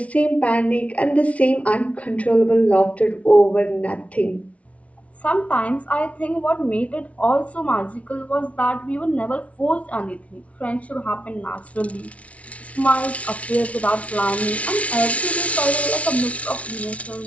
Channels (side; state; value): right; late; 0.065 ms